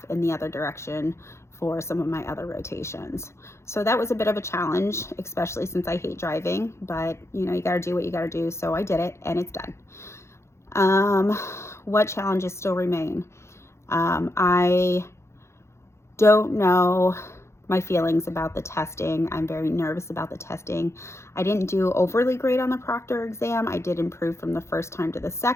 in the other direction for some of my other rotations. So that was a bit of a challenge, especially since I hate driving, but you know, you gotta do what you gotta do. So I did it and it's done. What challenges still remain? I don't know my feelings about the testing. I'm very nervous about the testing. I didn't do overly great on the proctor exam. I did improve from the first time to the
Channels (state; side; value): late; right; 0.13 ms